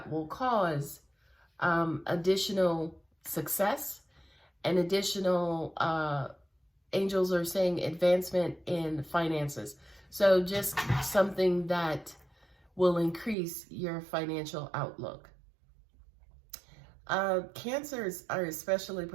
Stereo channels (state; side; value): drops out; left; at 13.4 s